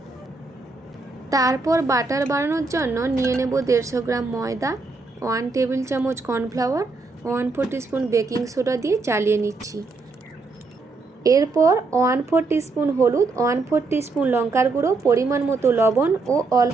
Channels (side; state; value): left; quieter; 3.8 dB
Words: তারপর বাটার বানানোর জন্য নিয়ে নেব 150 গ্রাম ময়দা, 1 টেবিল চামচ কর্নফ্লাওয়ার, 1/4 টিস্পুন বেকিং সোডা দিয়ে চালিয়ে নিচ্ছি। এরপর 1/4 টিস্পুন হলুদ, 1/4 টিস্পুন লঙ্কার গুঁড়ো, পরিমাণ মতো লবণ ও